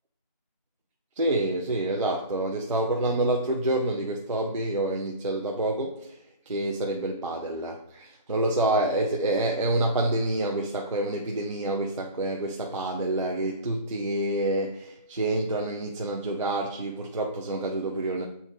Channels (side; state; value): both; inverted; correlation -0.33